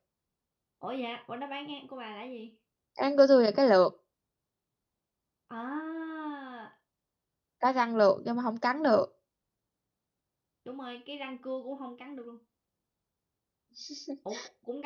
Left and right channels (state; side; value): identical; both; correlation 1.00